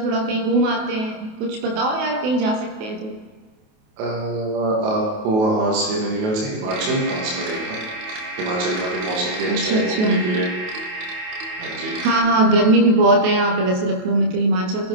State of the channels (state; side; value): late; left; 28 ms